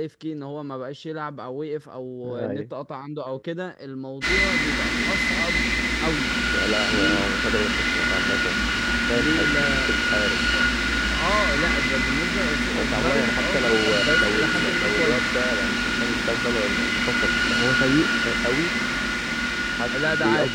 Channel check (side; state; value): both; identical; correlation 1.00